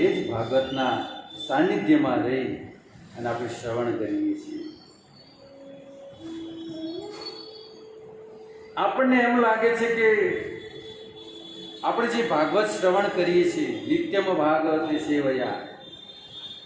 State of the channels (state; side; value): identical; both; correlation 1.00